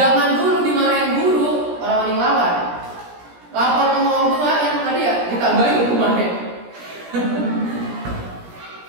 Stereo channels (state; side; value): late; left; 17 ms